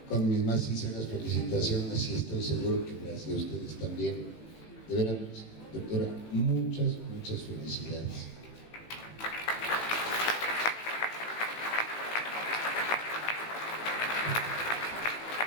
Con mis más sinceras felicitaciones y estoy seguro que las de ustedes también. De veras, doctora, muchas felicidades.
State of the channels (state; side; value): late; right; 18 ms